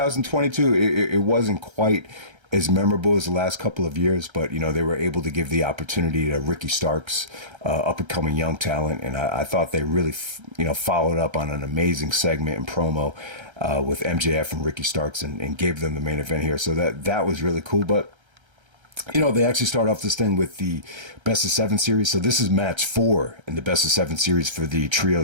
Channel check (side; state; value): left; late; 1.3 ms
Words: it wasn't quite as memorable as the last couple of years, but they were able to give the opportunity to Ricky Starks, up and coming young talent, and I thought they really followed up on an amazing segment and promo with MJF and Ricky Starks and gave them the main event here. So that was really cool, but. They actually start off this thing with the best of 7 series. So this is match 4 in the best of 7 series for the